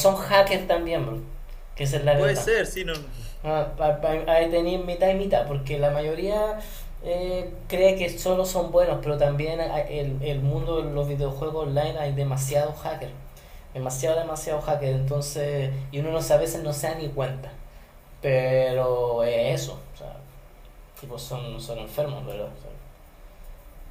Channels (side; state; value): both; identical; correlation 1.00